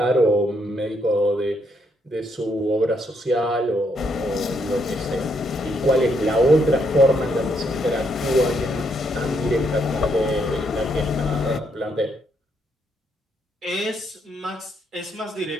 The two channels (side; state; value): both; normal; correlation 0.75